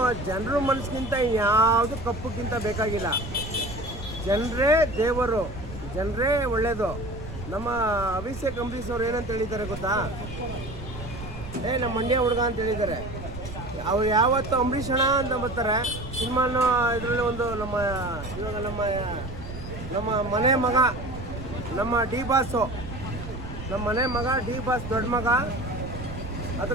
ಜನರ ಮನಸ್ಸಿಗಿಂತ ಯಾವುದು ಕಪ್ಪಕ್ಕಿಂತ ಬೇಕಾಗಿಲ್ಲ. ಜನರೇ ದೇವರು, ಜನರೇ ಒಳ್ಳೆಯದು. ನಮ್ಮ ಅಭಿಷೇಕ್ ಅಂಬರೀಷ್ ಅವ್ರು ಏನಂತ ಹೇಳಿದ್ದಾರೆ ಗೊತ್ತಾ? ನಮ್ಮ ಮಂಡ್ಯ ಹುಡುಗ ಅಂತ ಹೇಳಿದ್ದಾರೆ. ಅವ್ರು ಯಾವತ್ತು ಅಂಬರೀಷ್ ಅಣ್ಣ ಅಂತ ಬರ್ತಾರೆ ಸಿನಿಮಾನ. ಇದರಲ್ಲಿ ಒಂದು ಇವಾಗ ನಮ್ಮ ಮನೆ ಮಗ, ನಮ್ಮ ಡಿ ಬಾಸು, ನಮ್ಮ ಮನೆ ಮಗ ಡಿ ಬಾಸ್ ದೊಡ್ಡ ಮಗ,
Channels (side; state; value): right; noise; rumble, 11 dB below the sound